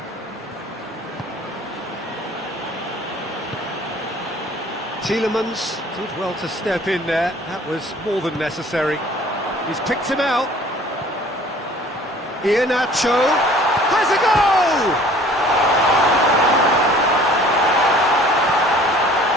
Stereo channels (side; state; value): both; normal; correlation 0.51